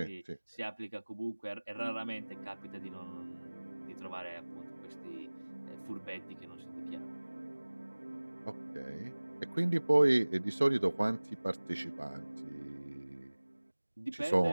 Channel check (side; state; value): both; inverted; correlation -1.00